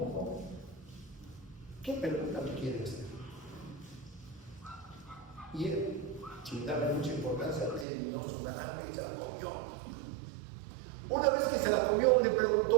¿Qué pregunta me quiere hacer? Y él, sin darle mucha importancia, terminó su naranja y se la comió. Una vez que se la comió, le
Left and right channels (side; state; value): left; drops out; at 7.9 s